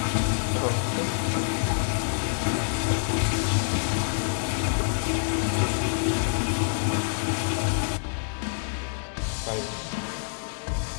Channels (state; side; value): silent; right; 60 dB below the other